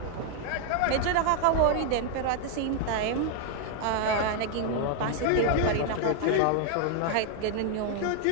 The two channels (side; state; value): both; different; correlation 0.00